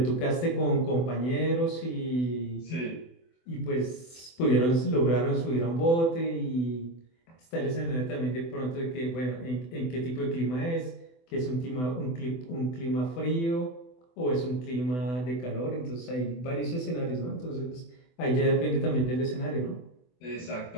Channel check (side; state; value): right; late; 24 ms